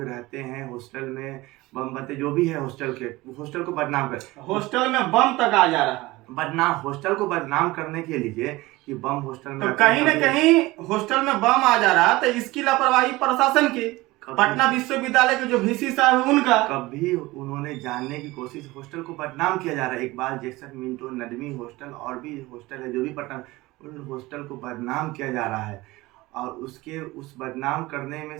रहते हैं, हॉस्टल में बम बनते, जो भी है हॉस्टल को बदनाम कर, हॉस्टल में बम तक आ जा रहा है। बदनाम, हॉस्टल को बदनाम करने के लिए कि बम हॉस्टल में, तो कहीं न कहीं हॉस्टल में बम आ जा रहा, तो इसकी लापरवाही प्रशासन की, पटना विश्वविद्यालय के जो वीसी साहब है उनका। कभी उन्होंने जानने की कोशिश, हॉस्टल को बदनाम किया जा रहा है। Iqbal Jackson Minto Nadvi hostel और भी हॉस्टल है जो भी पटना, उन हॉस्टल को बदनाम किया जा रहा है। और उस बदनाम करने में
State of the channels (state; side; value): quieter; left; 20.2 dB